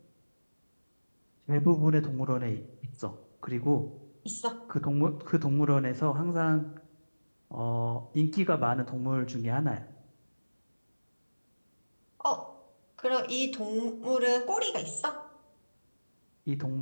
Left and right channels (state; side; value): inverted; both; correlation -1.00